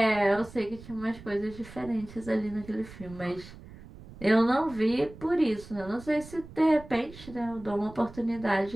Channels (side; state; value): right; noise; rumble, 17 dB below the sound